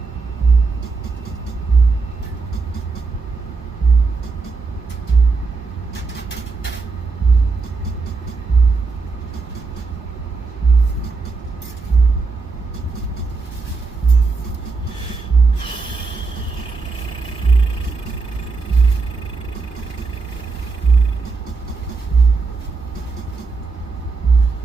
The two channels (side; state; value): left; quieter; 4.2 dB